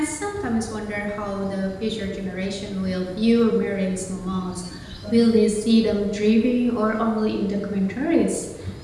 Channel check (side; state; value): both; identical; correlation 1.00